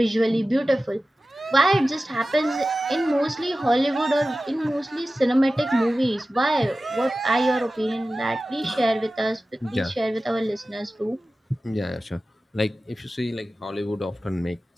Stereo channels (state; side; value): normal; both; correlation 0.95